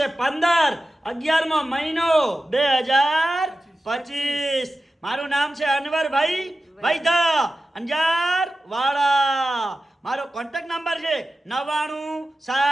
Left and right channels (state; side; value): normal; both; correlation 0.94